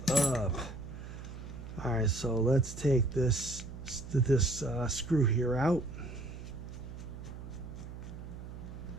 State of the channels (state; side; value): noise; right; hum, 11 dB below the sound